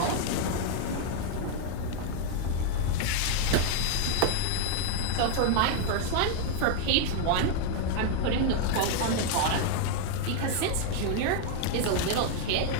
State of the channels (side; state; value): both; different; correlation 0.00